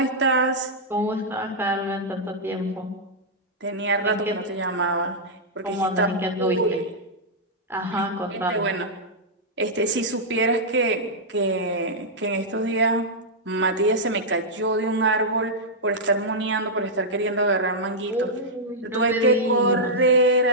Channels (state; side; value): normal; both; correlation -0.08